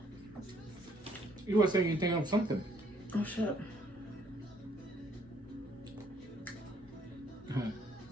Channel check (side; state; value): both; normal; correlation 0.65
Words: You were saying you think of something. Oh shit.